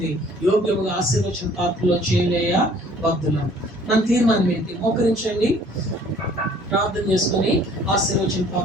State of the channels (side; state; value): both; normal; correlation 0.55